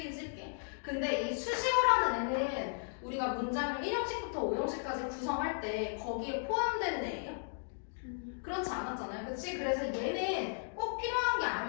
쓸게. 근데 이 수식어라는 애는 우리가 문장을 1형식부터 5형식까지 구성할 때 거기에 포함되는 애예요? 그렇지 않았잖아요. 그치? 그래서 얘는 꼭 필요한 게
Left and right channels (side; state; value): right; silent; digital silence